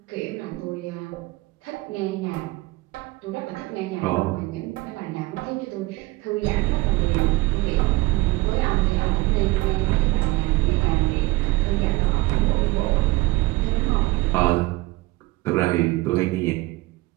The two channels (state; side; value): quieter; left; 21.2 dB